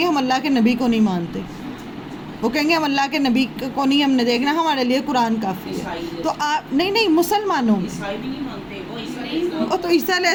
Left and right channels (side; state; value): both; identical; correlation 1.00